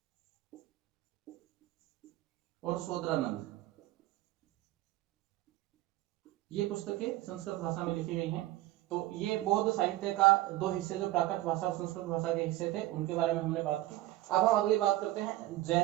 और शोधरानंद, ये पुस्तकें संस्कृत भाषा में लिखी गई हैं। तो ये बौद्ध साहित्य का दो हिस्से, जो प्राकृत भाषा और संस्कृत भाषा के हिस्से थे, उनके बारे में हमने बात की। अब हम अगली बात करते हैं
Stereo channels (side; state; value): left; quieter; 16.7 dB